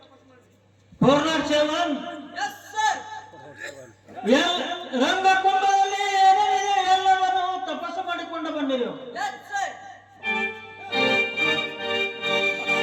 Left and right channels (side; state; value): both; identical; correlation 1.00